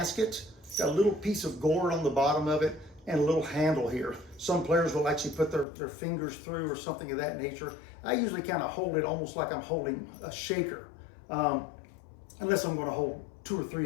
got a little piece of gourd on the bottom of it and a little handle here. Some players will actually put their fingers through or something of that nature. I usually kind of hold it almost like I'm holding a shaker, unless I'm going to hold two or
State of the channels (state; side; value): drops out; right; at 5.7 s